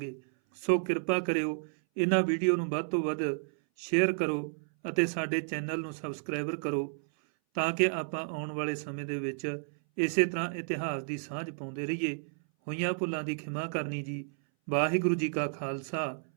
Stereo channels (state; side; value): silent; left; 57 dB below the other